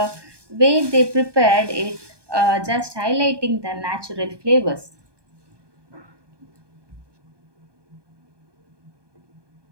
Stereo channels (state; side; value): late; left; 1.2 ms